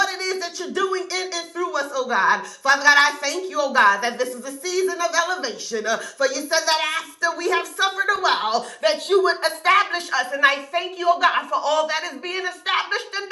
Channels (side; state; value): both; identical; correlation 1.00